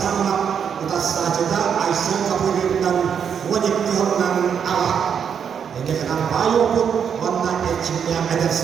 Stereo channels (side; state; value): left; quieter; 7.5 dB